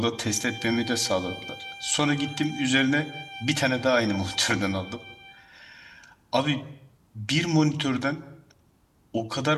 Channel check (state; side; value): identical; both; correlation 1.00